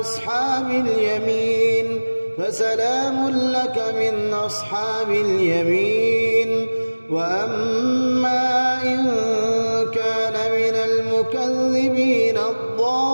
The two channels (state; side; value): inverted; both; correlation -1.00